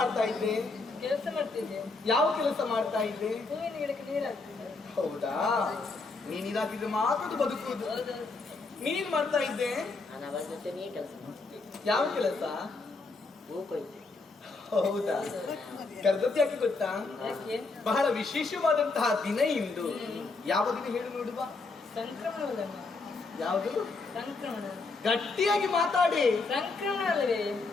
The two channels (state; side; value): quieter; right; 3.8 dB